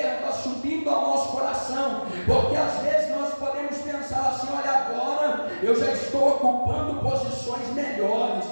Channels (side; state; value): both; inverted; correlation -1.00